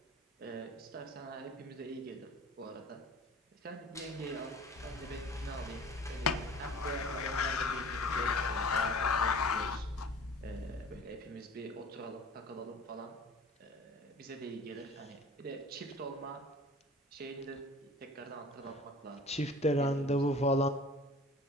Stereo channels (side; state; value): both; normal; correlation 0.44